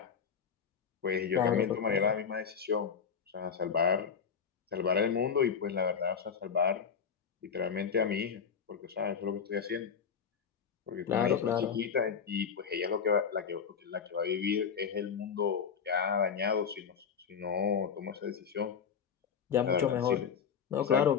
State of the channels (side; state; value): right; quieter; 6.8 dB